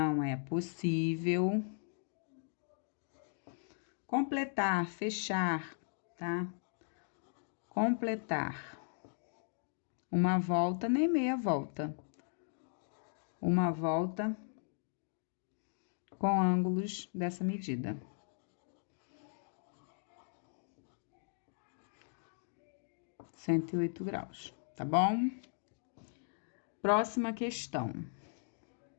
é possível completar, fechar, tá? Completar uma volta, nem meia volta. Uma volta com ângulos dessa medida. (108 graus), tá bom? Próxima questão.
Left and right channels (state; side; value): silent; right; digital silence